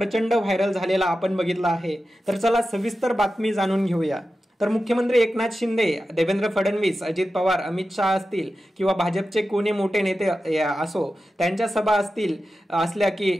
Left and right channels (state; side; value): normal; both; correlation 0.92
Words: व्हायरल झालेला आपण बघितला आहे। तर चला सविस्तर बातमी जाणून घेऊया। तर मुख्यमंत्री एकनाथ शिंदे, देवेंद्र फडणवीस, अजित पवार, अमित शहा असतील किंवा भाजपचे कोणी मोठे नेते असो, त्यांच्या सभा असल्या की